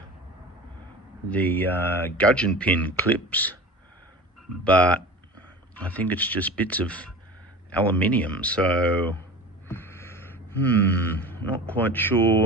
the gudgeon pin clips, but I think it's just bits of aluminium, so not quite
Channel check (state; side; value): normal; both; correlation 0.35